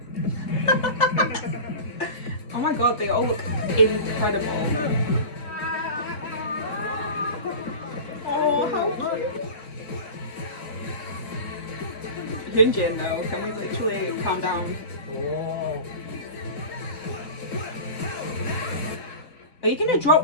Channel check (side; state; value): right; late; 3.2 ms